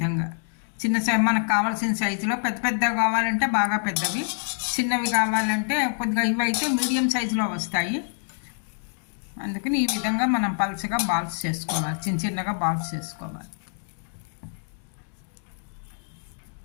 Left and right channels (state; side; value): silent; right; digital silence